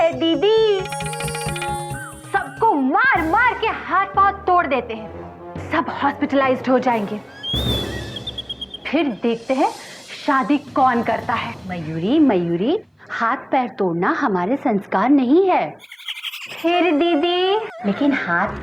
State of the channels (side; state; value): both; identical; correlation 1.00